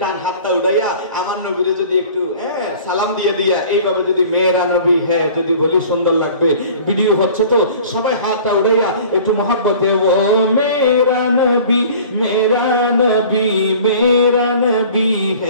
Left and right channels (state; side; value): inverted; both; correlation -0.46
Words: ডান হাতটা উঠাইয়া আমার নবীরে যদি একটু সালাম দিয়ে দিয়া এইভাবে যদি মেরা নবী হ্যাঁ যদি বলি সুন্দর লাগবে। ভিডিও হচ্ছে তো সবাই হাতটা উঠাইয়া একটু মহব্বতে ও মেরা নবী মেরা নবী মেরা নবী